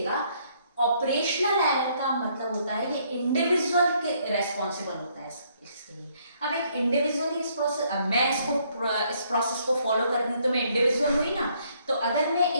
ऑपरेशनल एरर का मतलब होता है ये इंडिविजुअल के रेस्पॉन्सिबल होता है इसके लिए। अब एक इंडिविजुअली इस प्रोसेस, अब मैं इस प्रोसेस को फॉलो कर रही हूँ तो मैं इंडिविजुअल हुई ना। तो अगर मैं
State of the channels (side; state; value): both; inverted; correlation -0.68